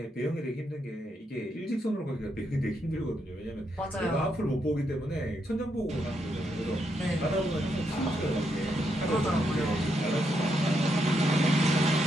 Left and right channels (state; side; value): normal; both; correlation 0.79